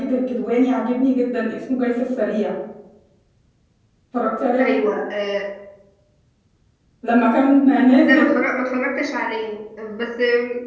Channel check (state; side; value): identical; both; correlation 1.00